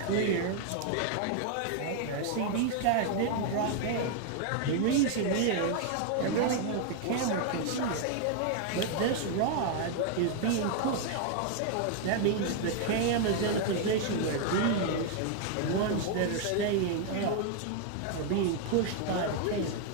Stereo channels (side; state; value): both; different; correlation 0.00